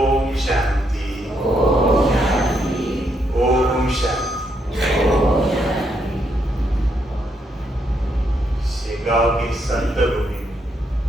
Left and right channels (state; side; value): normal; both; correlation 0.77